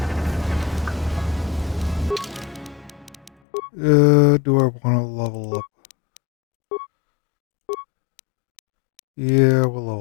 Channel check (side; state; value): right; drops out; at 3.3 s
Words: Do I want to level up? Yeah, we'll